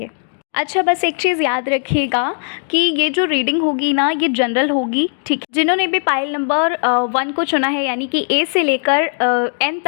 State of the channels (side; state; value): right; silent; 68 dB below the other